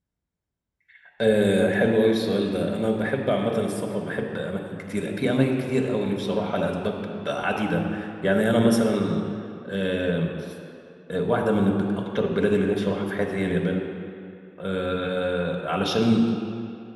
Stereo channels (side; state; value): both; identical; correlation 1.00